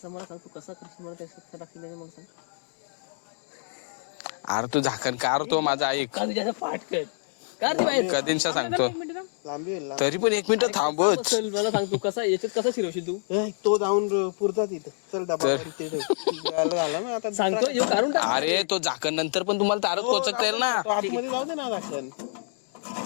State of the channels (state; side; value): silent; right; digital silence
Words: मला सांग, तू कसा करशील मला त्याचं टाकली नाही मग सांग. अरे तू झाकण कार तो माझा ऐक का तुझ्या पाठ कर कार ती बाहेर कधींचा सांगतो लांबी होईल, तरी पण 1 मिनिट थांबच. चल मला सांग तू कसा याच्यात कसा शिरवशील तू तो जाऊन पुरता तिथे चल डबा झाला ना आता सांगतो येऊ काढून टाक. अरे तो झाकण नंतर पण तुम्हाला तारच कोचकता येईल ना. तो आतमध्ये जाऊ दे ना झाकण